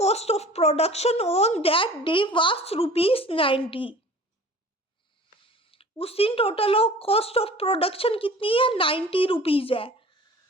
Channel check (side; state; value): both; normal; correlation 0.44